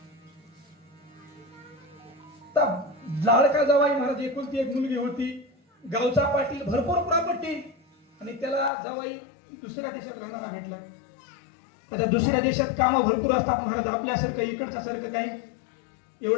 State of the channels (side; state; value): right; drops out; at 8.7 s